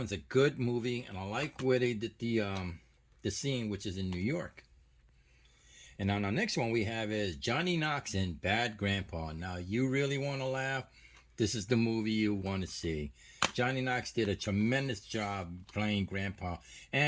a good movie, and I like where they did the scene, which is in New York. And on our next one we have is Johnny Knox in Bad Grandpa. Now, you really want to laugh? This is the movie you want to see. Johnny Knox did a tremendous job playing Grandpa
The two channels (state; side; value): identical; both; correlation 1.00